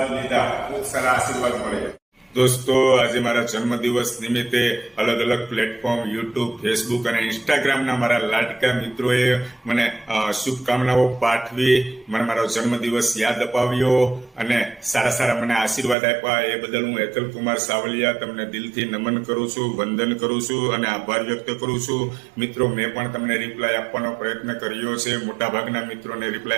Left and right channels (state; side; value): drops out; left; at 16.0 s